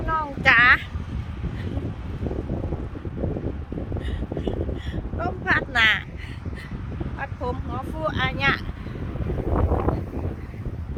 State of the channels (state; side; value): identical; both; correlation 1.00